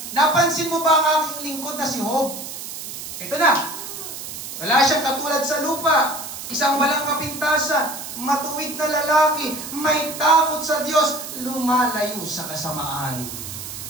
napansin mo ba ang aking lingkod na si Job? Ito na. Wala siyang katulad sa lupa. Isang walang kapintasan. Matuwid na lalaki. May takot sa Diyos. Lumalayo sa kasamaan.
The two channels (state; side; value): noise; right; hiss, 9 dB below the sound